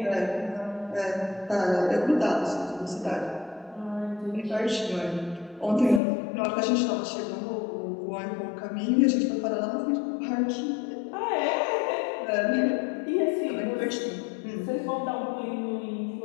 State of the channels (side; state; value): right; drops out; at 6.0 s